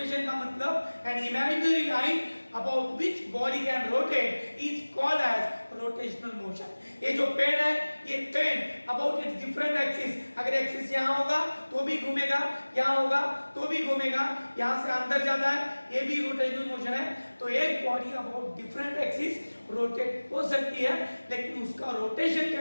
का मतलब an imaginary line about which body can rotate is called as rotational motion. ये जो पेन है, ये pen about its different axis, अगर एक्सिस यहाँ होगा तो भी घूमेगा, यहाँ होगा तो भी घूमेगा, यहाँ से अंदर जाता है, ये भी रोटेशनल मोशन है। तो एक body about different axis rotate हो सकती है, लेकिन उसका रोटेशन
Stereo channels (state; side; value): inverted; both; correlation -1.00